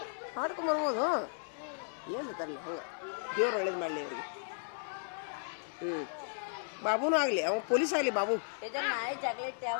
ಮಾಡ್ಕೊಂಬರ್ಬೋದು. ಏನು ತರಲಿ ಹಂಗೆ. ದೇವ್ರು ಒಳ್ಳೇದು ಮಾಡಲಿ ಅವ್ರಿಗೆ. ಬಾಬುನೂ ಆಗಲಿ, ಅವ ಪೊಲೀಸ್ ಆಗಲಿ. ಬಾಬು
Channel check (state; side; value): silent; right; 54 dB below the other